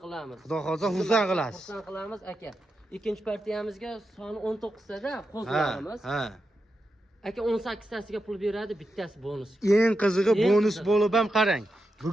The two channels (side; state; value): both; normal; correlation 0.88